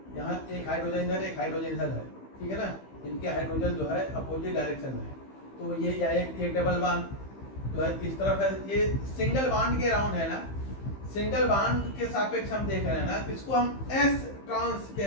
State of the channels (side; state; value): right; late; 15 ms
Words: यहाँ एक हाइड्रोजन इधर एक हाइड्रोजन इधर है, ठीक है ना, इनके हाइड्रोजन जो है अपोजिट डायरेक्शन में है, तो ये या एक डबल बॉन्ड तो है इस तरफ है, ये सिंगल बॉन्ड के राउंड है ना, सिंगल बॉन्ड के सापेक्ष हम देख रहे हैं ना, तो इसको हम एस ट्रांस